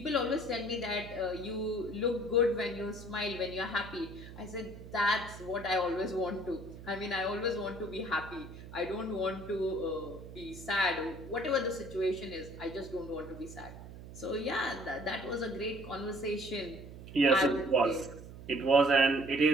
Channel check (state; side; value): noise; right; hum, 14 dB below the sound